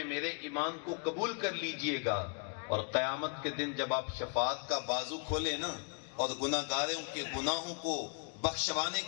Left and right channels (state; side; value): quieter; right; 38.4 dB